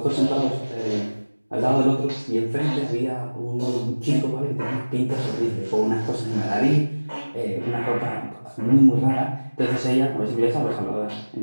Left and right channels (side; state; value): both; inverted; correlation -1.00